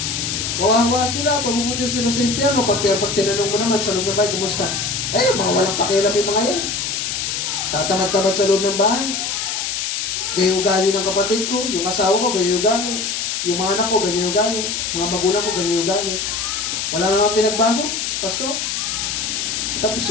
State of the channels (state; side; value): noise; left; hiss, 2 dB below the sound